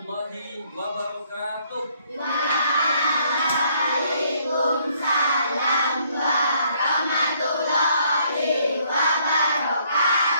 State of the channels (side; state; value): both; inverted; correlation -0.66